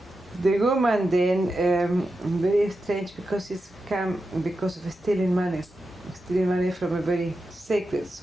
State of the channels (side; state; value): both; normal; correlation 0.90